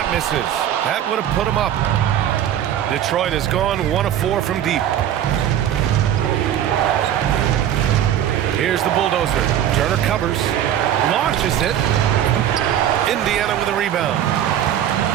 misses. That would have put him up. Detroit has gone 1 of 4 from deep. Here's the bulldozer. Turner covers. Launches it. Indiana with a rebound.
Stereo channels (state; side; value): quieter; left; 10.7 dB